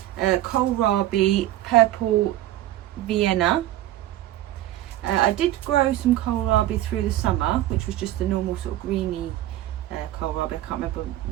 kohlrabi purple Vienna. I did grow some kohlrabi through the summer, which was just the normal sort of greeny kohlrabi. I can't remember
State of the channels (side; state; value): left; quieter; 14.2 dB